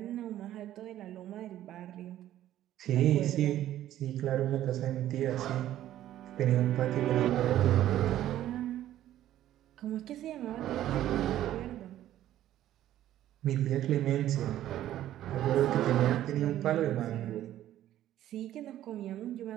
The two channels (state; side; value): quieter; left; 12.8 dB